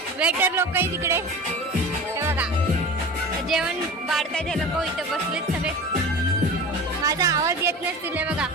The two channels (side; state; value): both; normal; correlation 0.34